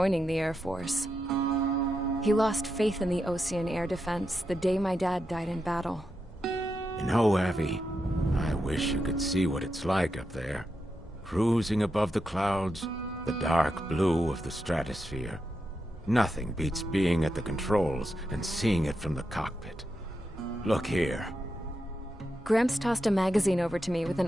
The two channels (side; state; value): both; normal; correlation 0.86